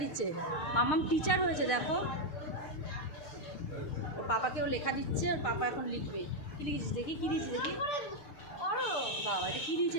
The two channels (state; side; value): late; right; 6.7 ms